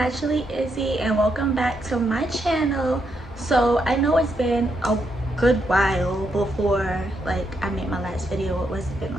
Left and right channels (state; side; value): normal; both; correlation 0.80